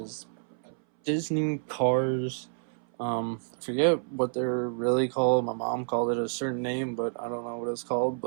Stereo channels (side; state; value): left; silent; 58 dB below the other